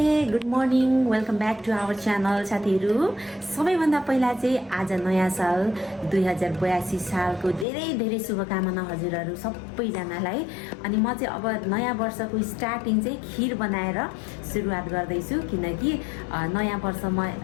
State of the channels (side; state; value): right; drops out; at 7.7 s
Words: good morning welcome back to our channel साथीहरू सबैभन्दा पहिला चाहिँ आज नयाँ साल 2082 सालको धेरै धेरै शुभकामना हजुरहरू सबैजनालाई अनि म चाहिँ अब नयाँ वर्षको स्टार्टिङ चाहिँ खिर बनाएर सुरुवात गर्दैछु किनकि नयाँ वर्षमा